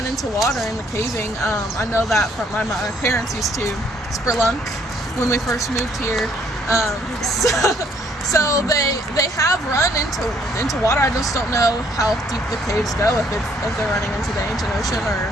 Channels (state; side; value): normal; both; correlation 0.65